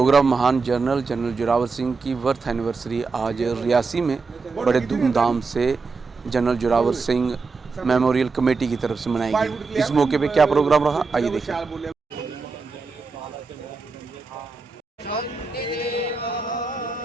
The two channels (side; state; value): left; quieter; 4.4 dB